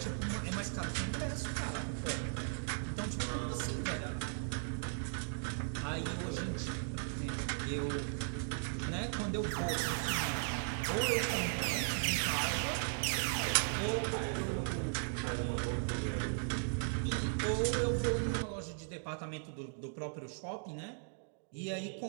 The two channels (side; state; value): left; silent; digital silence